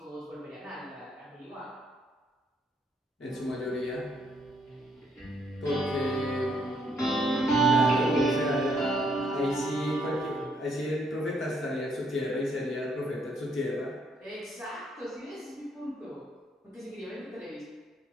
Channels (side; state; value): both; normal; correlation 0.70